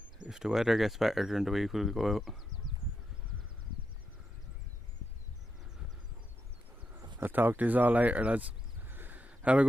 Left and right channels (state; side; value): normal; both; correlation 0.85